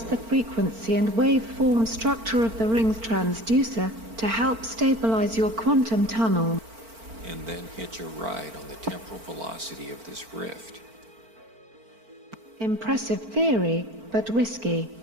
the frequency and waveform structure of the ring's transducer to help stabilize your quantum tunnel. And then hitch a ride on the temporal velocity of this rift. Impressive theory, but risky.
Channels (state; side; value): late; left; 4.4 ms